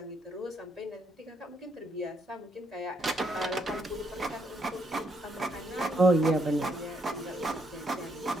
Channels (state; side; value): normal; both; correlation 0.74